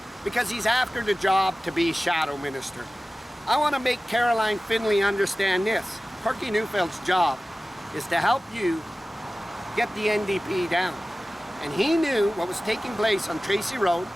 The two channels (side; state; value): both; normal; correlation 0.96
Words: because he's after the job to be shadow minister. I want to make Caroline Finley understand this. Corky Neufeld's job is to help you get the NDP down. And he knew what was taking place on Tracy Road